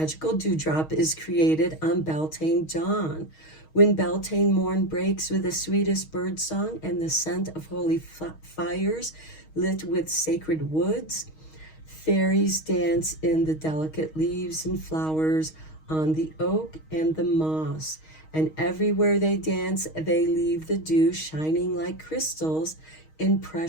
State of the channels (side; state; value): right; late; 6.4 ms